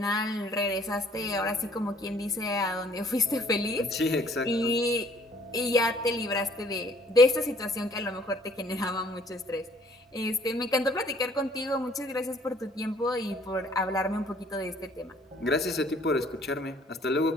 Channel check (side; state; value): both; normal; correlation 0.59